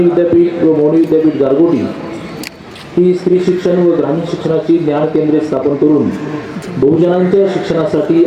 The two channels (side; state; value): both; identical; correlation 1.00